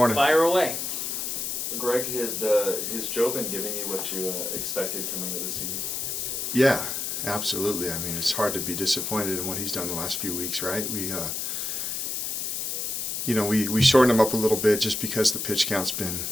Fire away. Greg, has Joe been giving you what you expected coming into the season? Yeah, absolutely. I mean, it's hard to be disappointed in what he's done the last few weeks, right? We shortened him up a little bit just because the pitch count's been,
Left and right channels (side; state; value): left; noise; hiss, 2 dB below the sound